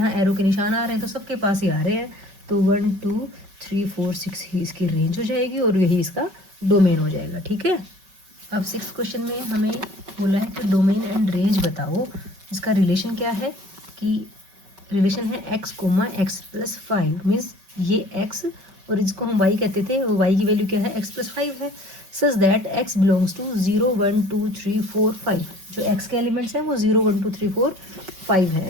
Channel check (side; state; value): left; late; 5.3 ms